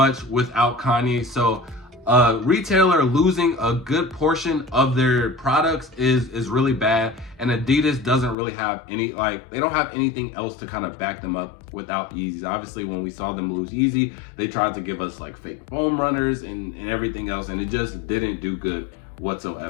without Kanye, so a retailer losing a good portion of their products is really bad, and Adidas doesn't really have any, they don't have anything else to kind of back them up without Yeezys. Obviously, when we saw them lose Yeezy, they tried to give us fake foam runners and everything else, and it just didn't do good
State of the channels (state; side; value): drops out; right; at 8.3 s